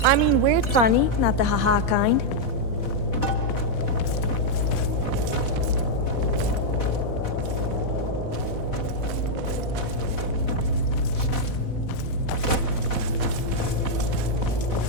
I mean weird funny, not the haha kind.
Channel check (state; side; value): late; right; 4.1 ms